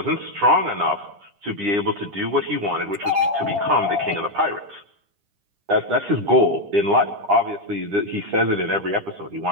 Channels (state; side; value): late; left; 9.9 ms